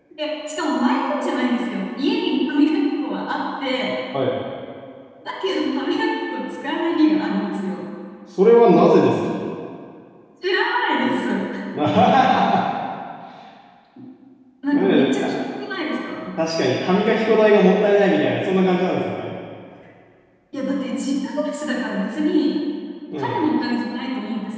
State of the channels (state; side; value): identical; both; correlation 1.00